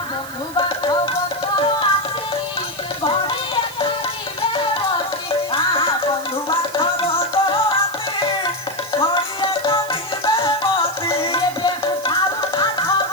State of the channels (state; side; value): noise; right; hiss, 16 dB below the sound